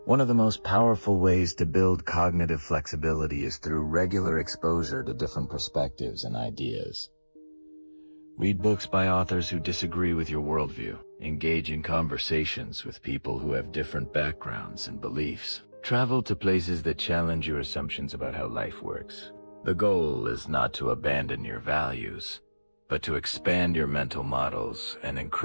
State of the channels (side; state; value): both; inverted; correlation -1.00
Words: One of the most powerful ways to build cognitive flexibility is through regular exposure to different perspectives and ideas. Read books by authors who disagree with your worldview. Engage in conversations with people who have different backgrounds and beliefs. Travel to places that challenge your assumptions about how life works. The goal is not to abandon your values, but to expand your mental models and